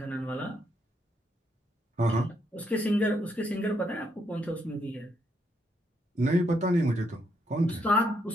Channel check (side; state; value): both; normal; correlation 0.76